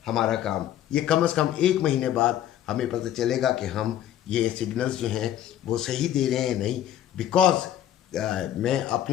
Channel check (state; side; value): quieter; right; 11.5 dB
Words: हमारा काम। ये कम से कम 1 महीने बाद हमें पता चलेगा कि हम ये सिग्नल्स जो हैं वो सही दे रहे हैं नहीं। बिकॉज मैं